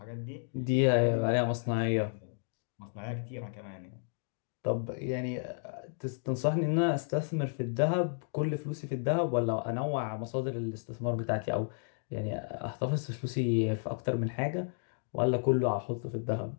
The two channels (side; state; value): right; silent; digital silence